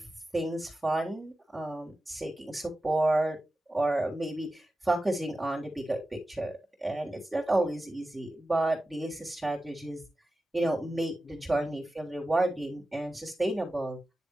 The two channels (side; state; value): both; normal; correlation 0.93